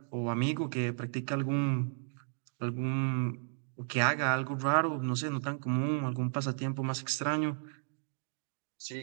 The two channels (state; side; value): silent; left; digital silence